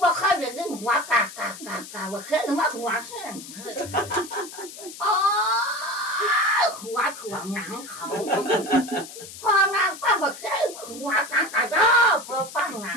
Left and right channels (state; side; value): noise; left; hiss, 14 dB below the sound